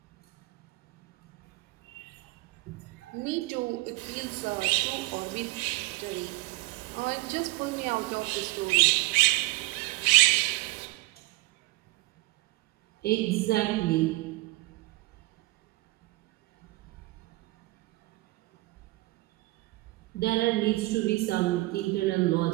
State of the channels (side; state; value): left; quieter; 20.8 dB